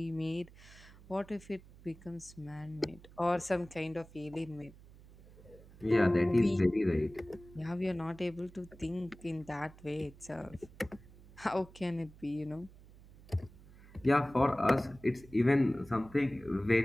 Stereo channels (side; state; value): right; noise; hum, 21 dB below the sound